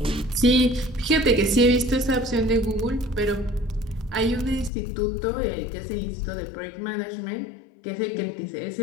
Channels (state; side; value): drops out; right; at 4.7 s